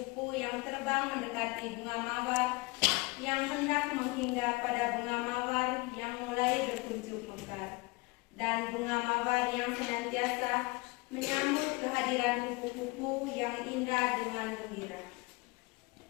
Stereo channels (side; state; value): right; quieter; 25.3 dB